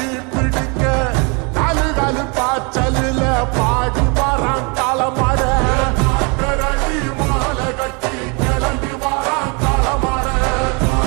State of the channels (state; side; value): quieter; left; 32.3 dB